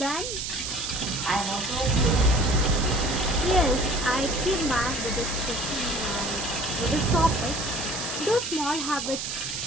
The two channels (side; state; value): right; noise; hiss, 4 dB below the sound